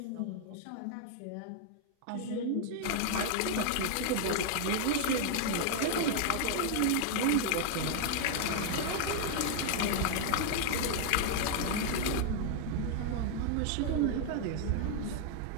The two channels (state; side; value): different; both; correlation 0.00